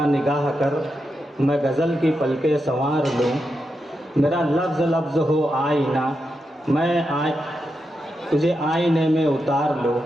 निगाह कर मैं गज़ल की पलके संवार लूँ, मेरा लफ्ज़ लफ्ज़ हो आईना, मैं तुझे आईने में उतार लूँ।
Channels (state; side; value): normal; both; correlation 0.86